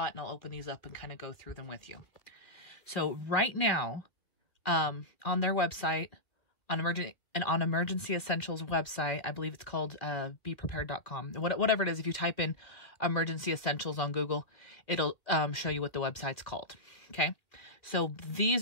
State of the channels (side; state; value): right; late; 2.0 ms